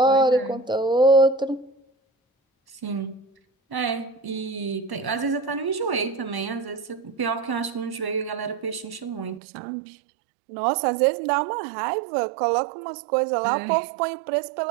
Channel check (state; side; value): drops out; left; at 9.4 s